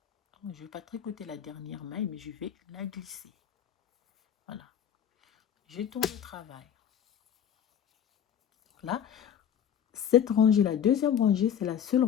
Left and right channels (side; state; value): right; quieter; 9.0 dB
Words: Je ne vais pas tricoter la dernière maille, mais je vais la glisser. Voilà. Je tourne le travail. Là, cette rangée, la deuxième rangée, c'est la seule